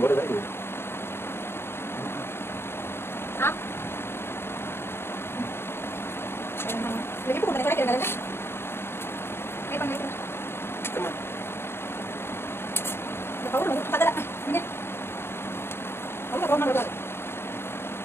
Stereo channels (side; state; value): right; late; 0.11 ms